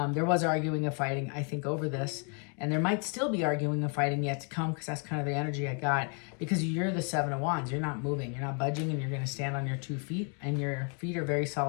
There was arguing and fighting, I think, over this. And there might still be arguing and fighting yet to come, because that's kind of the energy I got. Because you're the 7 of Wands. You're not moving. You're not budging, and you're going to stand on your 2 feet. And your feet are very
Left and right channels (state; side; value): quieter; right; 39.4 dB